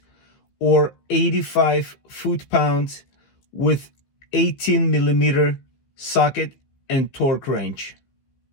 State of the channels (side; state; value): right; late; 15 ms